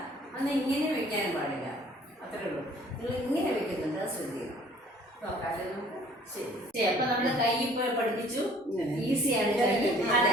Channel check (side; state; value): both; normal; correlation 0.54